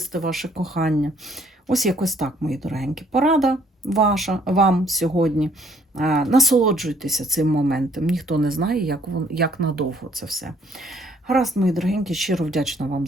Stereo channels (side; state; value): both; normal; correlation 0.63